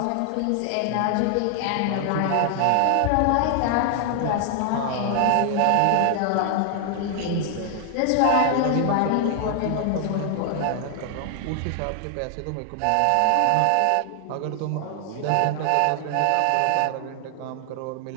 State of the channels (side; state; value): both; different; correlation 0.00